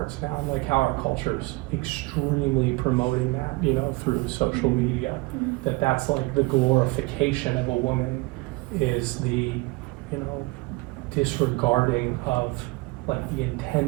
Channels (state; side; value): quieter; left; 23.3 dB